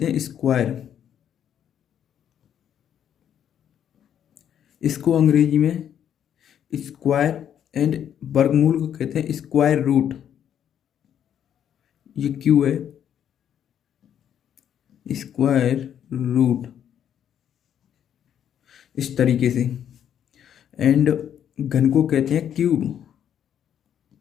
हैं स्क्वायर, इसको अंग्रेजी में स्क्वायर, एंड वर्गमूल को कहते हैं स्क्वायर रूट। ये क्यों है स्क्वायर रूट, इस तरीके से। एंड घन को कहते हैं cube,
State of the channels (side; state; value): right; quieter; 9.5 dB